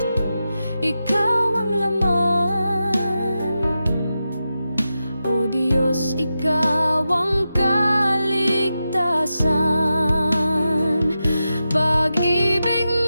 ikaw ang laman. O Diyos, ikaw ang kaligtasan. Pag-ibig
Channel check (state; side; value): inverted; both; correlation -0.90